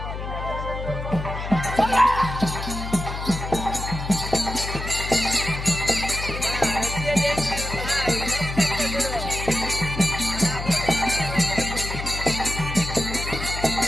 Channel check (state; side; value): noise; left; hum, 6 dB below the sound